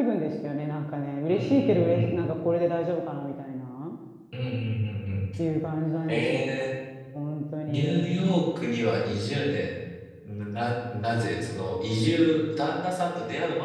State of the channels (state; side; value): identical; both; correlation 1.00